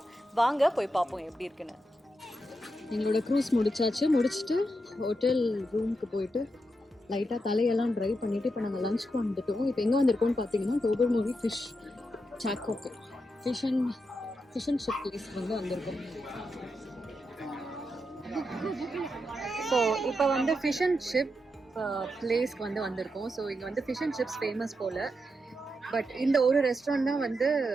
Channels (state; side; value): normal; both; correlation 0.85